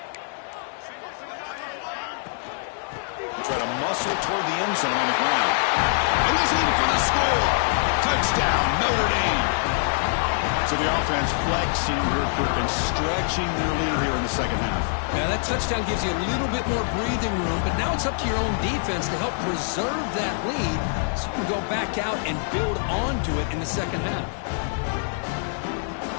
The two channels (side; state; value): right; silent; digital silence